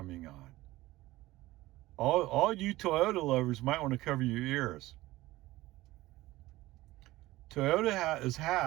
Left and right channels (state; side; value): quieter; left; 17.9 dB